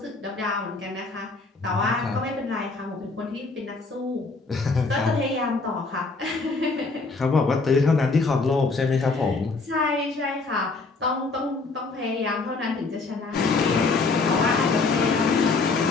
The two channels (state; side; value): quieter; right; 3.9 dB